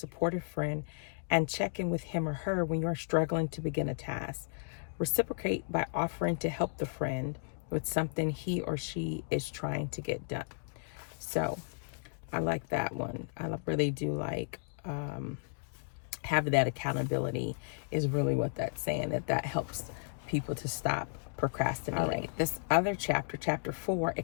friend, and check in with him or her when you are struggling to begin a task. Reciprocate by offering to help the friend with something he or she is trying to get done. So I like that one. I really do like having that accountability is really what that's saying, that helps people to stop procrastinating. All right, this other chapter, chapter 4,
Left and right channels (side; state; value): right; silent; digital silence